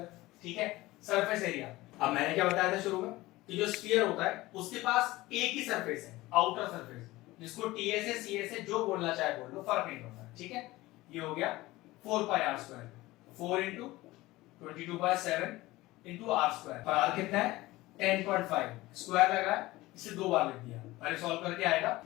ठीक है। सरफेस एरिया, अब मैंने क्या बताया था शुरू में कि जो स्फीयर होता है उसके पास एक ही सरफेस है, आउटर सरफेस, जिसको टीएसए सीएसए जो बोलना चाहे बोल लो, फर्क नहीं पड़ता, ठीक है। ये हो गया 4 pi r square, 4 into 22/7 into r square, पर r कितना है? 10.5, स्क्वायर लगा है, इसे 2 बार लिख दिया, पहले सॉल्व करके आएगा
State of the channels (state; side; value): quieter; right; 18.9 dB